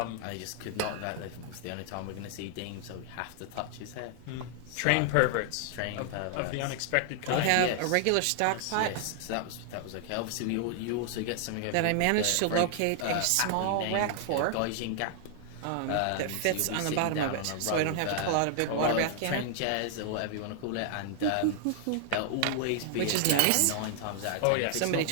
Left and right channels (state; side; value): different; both; correlation 0.00